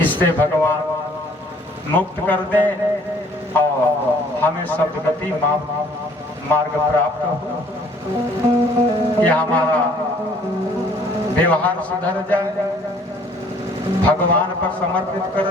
इससे भगवान मुक्त कर दे और हमें सद्गति मार्ग प्राप्त हो। यह हमारा व्यवहार सुधर जाए भगवान पर समर्पित कर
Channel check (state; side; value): normal; both; correlation 0.58